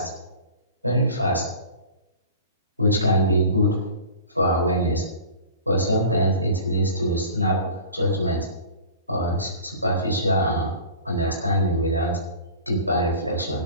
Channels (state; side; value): inverted; both; correlation -0.41